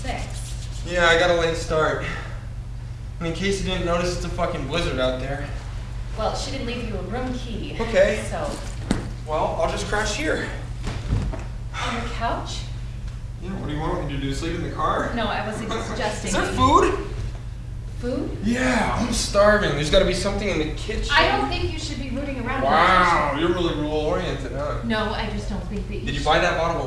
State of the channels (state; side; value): identical; both; correlation 1.00